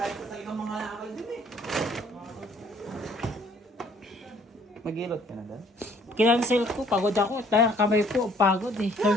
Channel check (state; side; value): normal; both; correlation 0.60